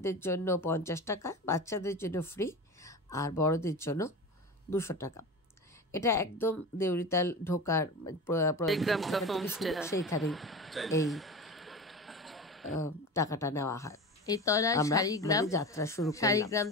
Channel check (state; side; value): normal; both; correlation 0.29